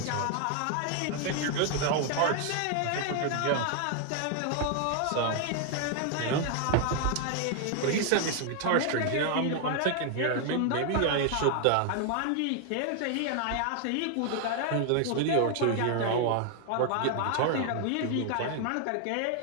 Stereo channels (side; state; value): both; different; correlation 0.00